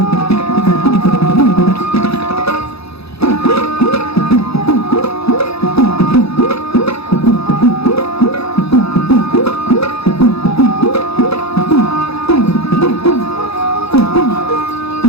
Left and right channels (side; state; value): right; late; 0.78 ms